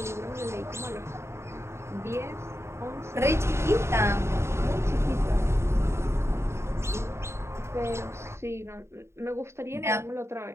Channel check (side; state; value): left; late; 0.13 ms